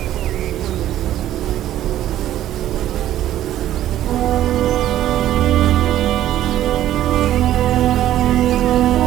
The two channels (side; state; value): left; quieter; 12.7 dB